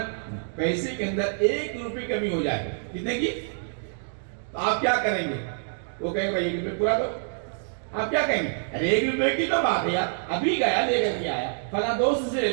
پیسے کے اندر 1 روپے کمی ہو جائے, کتنے کی, تو آپ کیا کریں گے؟ وہ کہیں گے بھائی 1 روپے پورا دو. آپ کیا کہیں گے؟ ارے 1 روپے کی تو بات ہے یار, ابھی گیا لے کر کے آیا, فلاں دوست سے لے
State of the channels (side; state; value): left; silent; digital silence